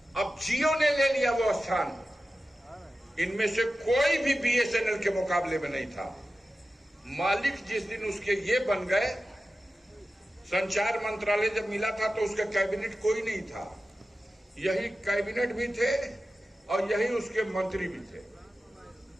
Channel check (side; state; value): both; normal; correlation 0.94